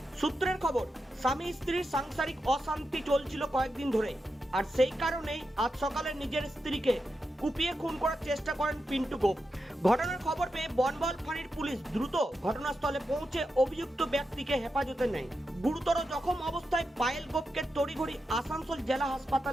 সূত্রের খবর, স্বামী স্ত্রীর সাংসারিক অশান্তি চলছিল কয়েকদিন ধরে, আর সেই কারণেই আজ সকালে নিজের স্ত্রীকে কুপিয়ে খুন করার চেষ্টা করেন পিন্টু গোপ। ঘটনার খবর পেয়ে বনবল ফাঁড়ির পুলিশ দ্রুত ঘটনাস্থলে পৌঁছে অভিযুক্ত ব্যক্তিকে হেফাজতে নেয়। গুরুতর জখম অবস্থায় পায়েল গোপকে তড়িঘড়ি আসানসোল জেলা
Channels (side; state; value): both; normal; correlation 0.87